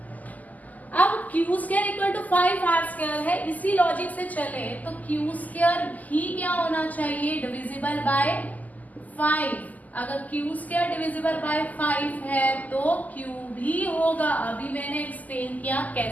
अब q square equal to 5r square है, इसी लॉजिक से चले तो क्यू स्क्वायर भी क्या होना चाहिए, डिविजिबल बाय 5। अगर क्यू स्क्वायर डिविजिबल बाय 5 है तो क्यू भी होगा। अभी मैंने एक्सप्लेन किया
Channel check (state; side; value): late; right; 0.079 ms